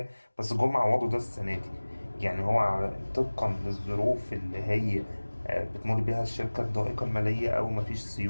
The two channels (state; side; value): inverted; both; correlation -1.00